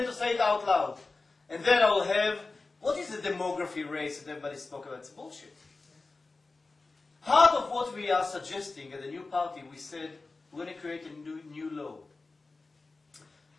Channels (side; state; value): right; quieter; 3.6 dB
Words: to say it out loud. And then I will have, what is the demography race that everybody spoke about? It's bullshit. Part of what we are suggesting at the new party, we said we're going to create a new law.